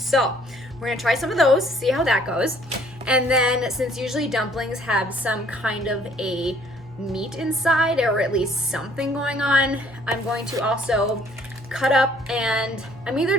we're gonna try some of those, see how that goes. And then since usually dumplings have some kind of a meat inside, or at least something going on, I'm going to also cut up, and I'm either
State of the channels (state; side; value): normal; both; correlation 0.60